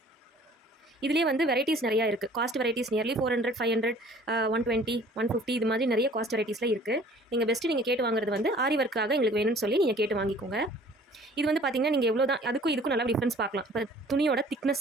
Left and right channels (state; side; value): normal; both; correlation 0.52